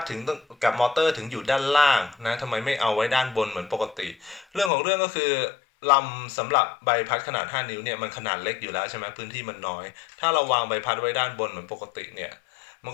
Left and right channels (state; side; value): drops out; right; at 4.7 s